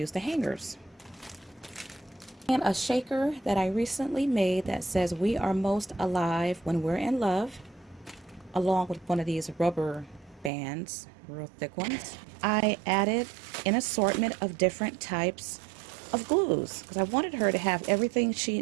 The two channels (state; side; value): drops out; left; at 10.5 s